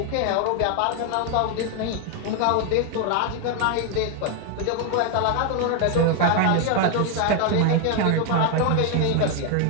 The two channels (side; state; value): both; different; correlation 0.01